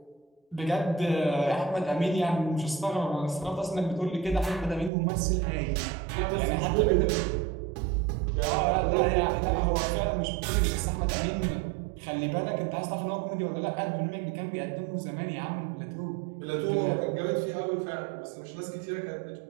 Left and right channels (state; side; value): drops out; left; at 4.9 s